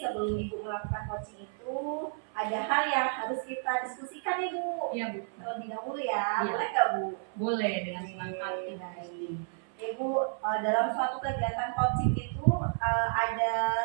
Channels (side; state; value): left; silent; 57 dB below the other